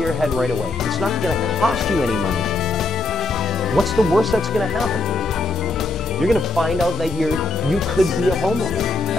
your head right away. It's not going to cost you any money. What's the worst that's going to happen? You're going to find out that you could be a homeowner.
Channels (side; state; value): right; quieter; 3.0 dB